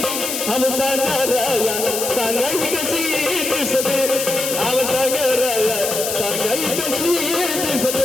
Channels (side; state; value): left; noise; hiss, 3 dB below the sound